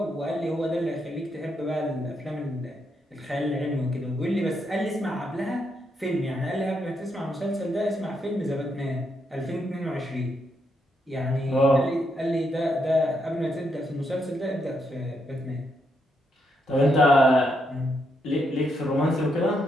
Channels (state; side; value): normal; both; correlation 0.79